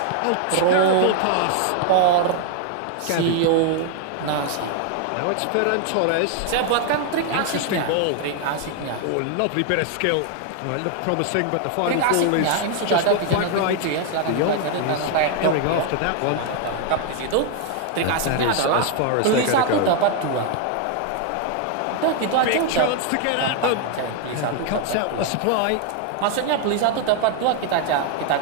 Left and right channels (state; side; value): different; both; correlation 0.00